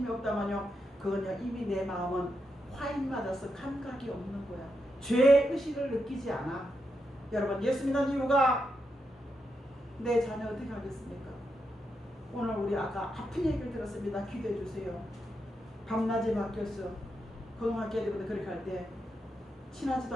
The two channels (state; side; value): normal; both; correlation 0.84